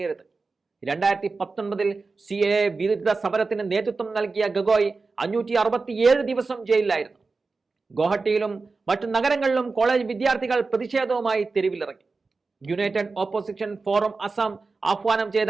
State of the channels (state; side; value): quieter; left; 4.0 dB